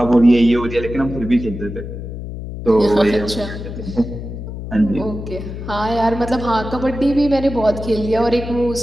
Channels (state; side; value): noise; left; hum, 9 dB below the sound